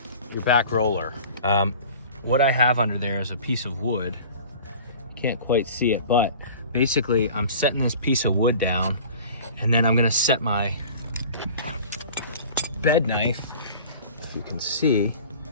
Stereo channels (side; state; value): both; inverted; correlation -0.43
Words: your back roller. What I have under there is a piece of wood. You can't quite see it, but basically I'm setting this piece of wood down, and then I'm gonna set my bed knife, if you can see,